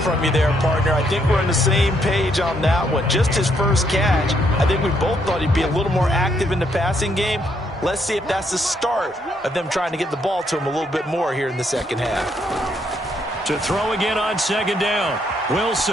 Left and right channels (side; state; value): both; normal; correlation 0.73